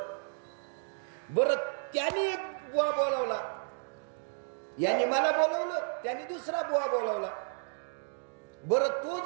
बरं त्याने एक बुवा बोलावला, यांनी मला बोलवलं, त्याने दुसरा बुवा बोलावला. बरं तो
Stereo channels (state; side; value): silent; left; digital silence